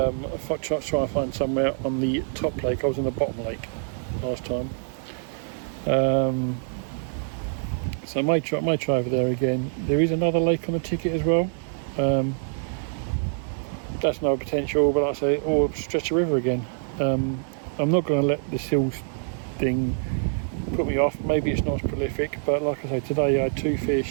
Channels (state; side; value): silent; left; digital silence